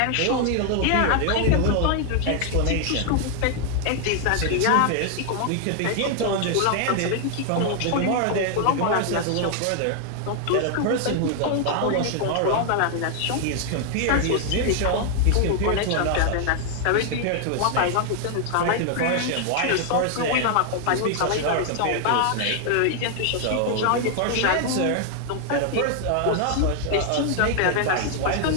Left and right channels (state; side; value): different; both; correlation 0.00